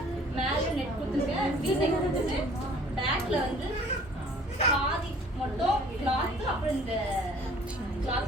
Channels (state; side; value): normal; both; correlation 0.53